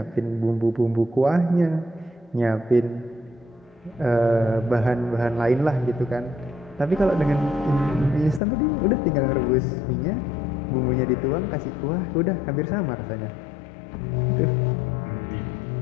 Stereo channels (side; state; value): right; drops out; at 8.4 s